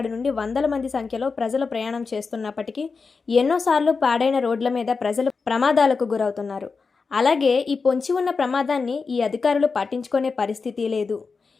నుండి వందల మంది సంఖ్యలో ప్రజలు ప్రయాణం చేస్తున్నప్పటికీ ఎన్నోసార్లు పాడైన రోడ్ల మీద ప్రజలు ప్రమాదాలకు గురవుతున్నారు. అలాగే ఈ పొంచి ఉన్న ప్రమాదాన్ని ఈ అధికారులు పట్టించుకునే పరిస్థితి లేదు.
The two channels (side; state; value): right; quieter; 4.7 dB